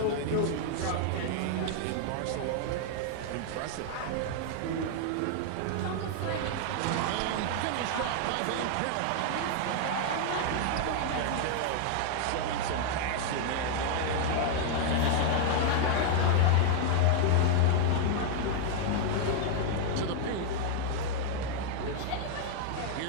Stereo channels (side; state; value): both; different; correlation 0.00